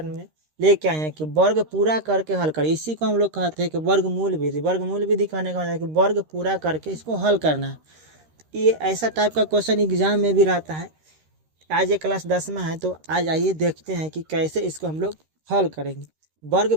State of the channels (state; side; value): late; left; 13 ms